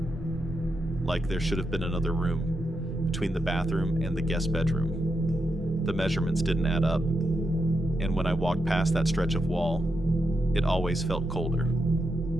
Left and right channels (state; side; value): normal; both; correlation 0.85